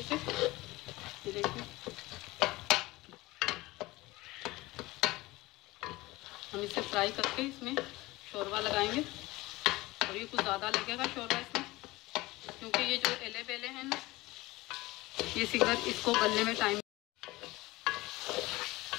से। ये देखिए हम इसे फ्राई करके इसमें शोरबा लगाएंगे, और ये कुछ ज़्यादा लगेगा शोरबा इसमें, क्योंकि ये जो एले बेले हैं ना, ये सिंगर इसको गलने में टाइम।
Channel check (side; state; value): right; quieter; 20.1 dB